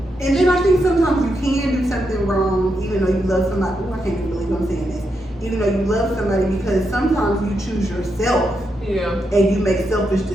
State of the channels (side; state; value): both; normal; correlation 0.83